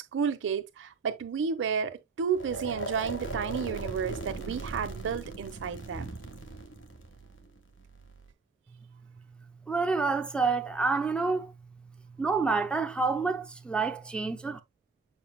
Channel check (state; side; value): quieter; left; 4.5 dB